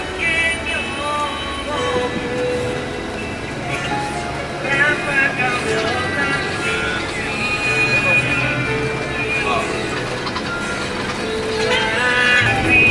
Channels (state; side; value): identical; both; correlation 1.00